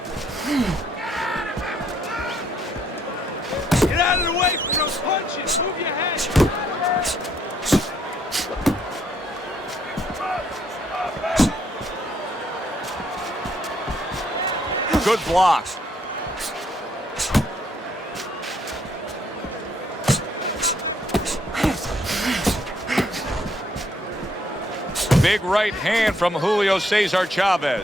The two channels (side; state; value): both; normal; correlation 0.70